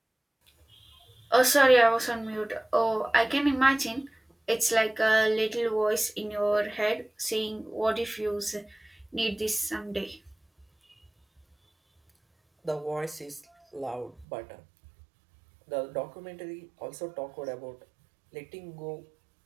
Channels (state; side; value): drops out; left; at 14.2 s